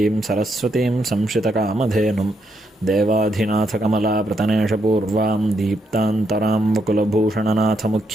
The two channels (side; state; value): both; normal; correlation 0.78